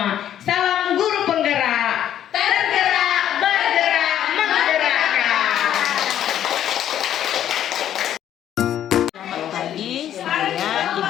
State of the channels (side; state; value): right; quieter; 10.8 dB